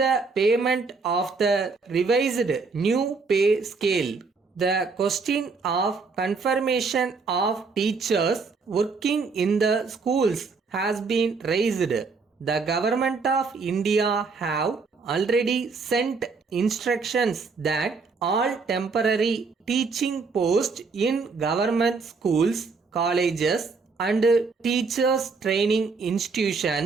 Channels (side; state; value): left; quieter; 4.5 dB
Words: payment of the revised new pay scale. The question of confirmation of teachers working in the schools has been raised. The government of India have already sent instructions that all temporary teaching posts in government schools, colleges and teachers training